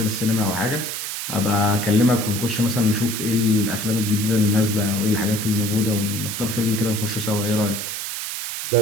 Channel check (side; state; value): right; noise; hiss, 4 dB below the sound